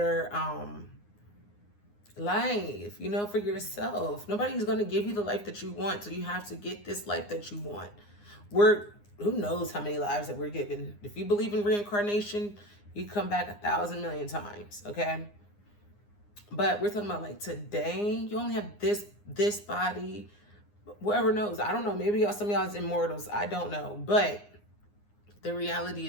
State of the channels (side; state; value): right; late; 9.7 ms